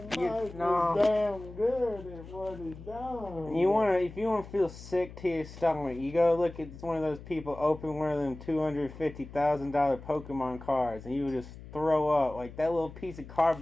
was damn good at what he done. If you wanna feel sick to your stomach, you go look at one of those people open one of them $250,000 Pokemon cards, and you would just throw up like that little piece of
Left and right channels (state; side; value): noise; left; hum, 15 dB below the sound